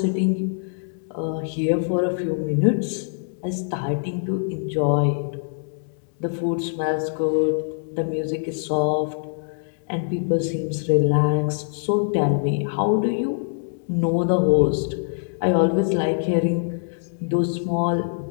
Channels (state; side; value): silent; right; digital silence